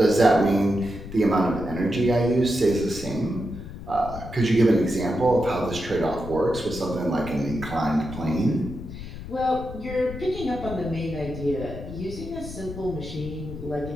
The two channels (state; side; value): noise; left; rumble, 11 dB below the sound